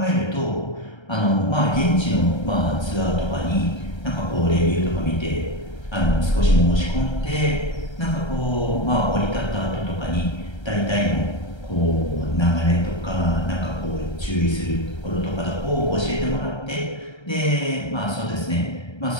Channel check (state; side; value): late; right; 1.3 ms